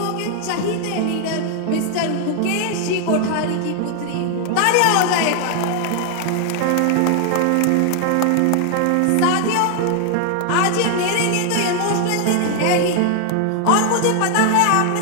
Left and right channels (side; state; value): both; different; correlation 0.00